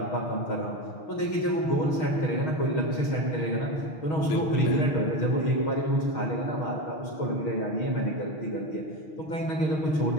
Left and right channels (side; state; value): right; late; 6.4 ms